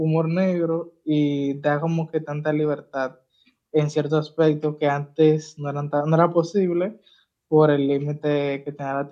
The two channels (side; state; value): both; identical; correlation 1.00